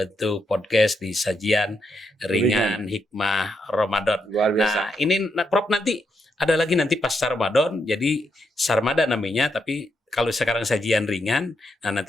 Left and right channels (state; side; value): normal; both; correlation 0.81